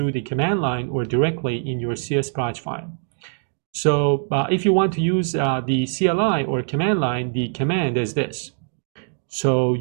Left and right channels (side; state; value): left; silent; digital silence